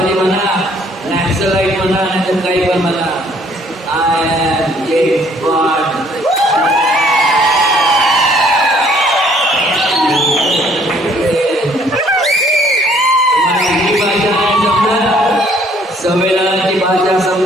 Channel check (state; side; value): normal; both; correlation 0.61